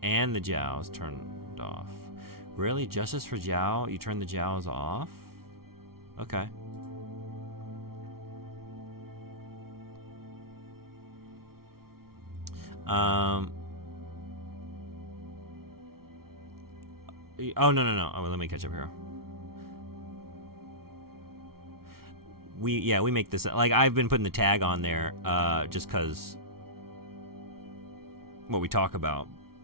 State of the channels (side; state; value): left; late; 0.94 ms